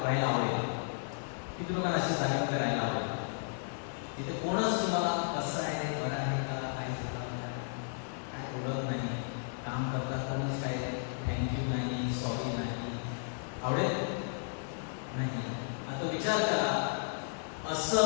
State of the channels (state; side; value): silent; right; digital silence